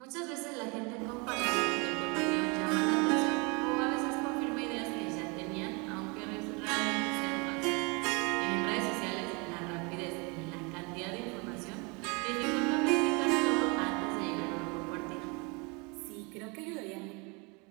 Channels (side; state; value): left; quieter; 30.2 dB